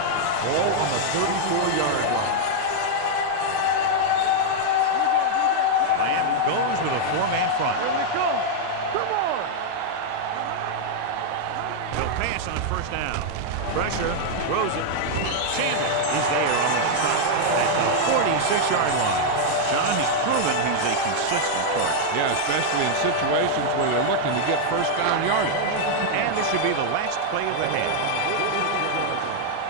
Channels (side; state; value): both; different; correlation -0.01